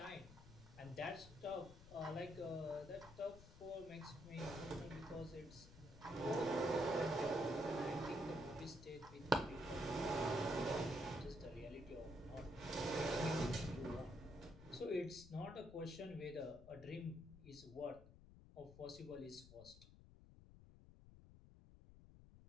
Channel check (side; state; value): left; noise; rumble, 17 dB below the sound